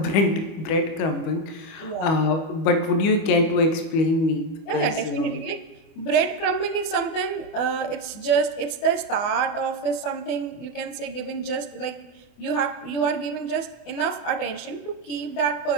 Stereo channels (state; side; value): late; right; 24 ms